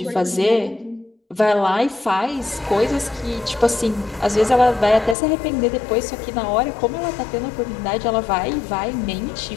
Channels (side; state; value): right; drops out; at 5.2 s